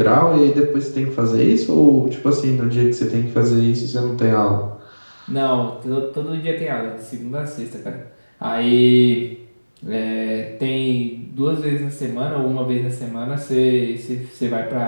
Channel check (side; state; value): both; inverted; correlation -1.00